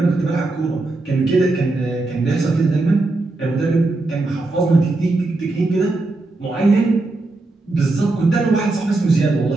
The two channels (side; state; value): left; quieter; 3.1 dB